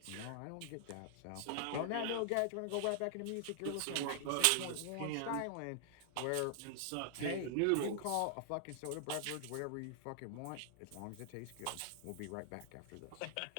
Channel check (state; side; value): different; both; correlation 0.00